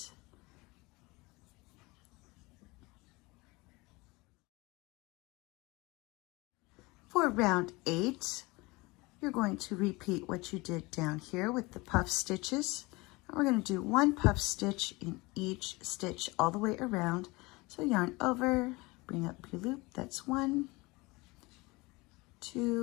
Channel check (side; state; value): right; quieter; 23.6 dB